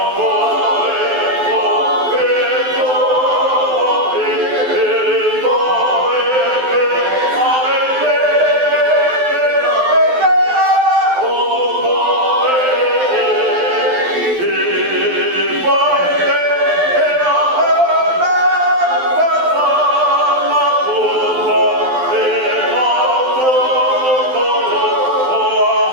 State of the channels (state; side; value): late; left; 12 ms